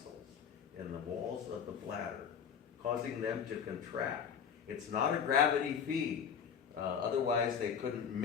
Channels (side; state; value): right; quieter; 7.4 dB